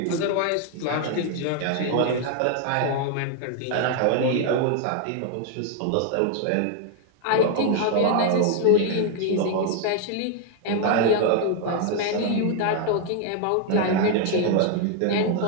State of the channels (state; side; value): different; both; correlation 0.00